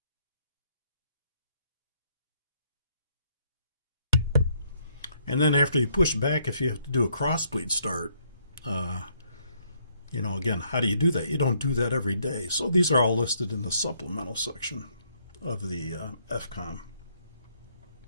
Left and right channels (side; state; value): both; inverted; correlation -0.70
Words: And then after you push back, if you have to do a crossbleed start, again, how do you do that? You don't do that every day. So these are all listed in the supplemental section of the FCOM.